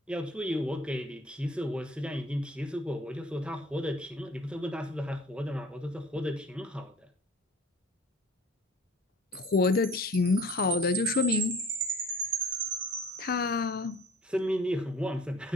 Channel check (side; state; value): both; normal; correlation 0.47